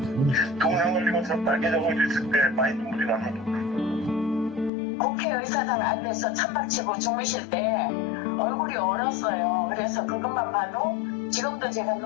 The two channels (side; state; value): right; drops out; at 4.7 s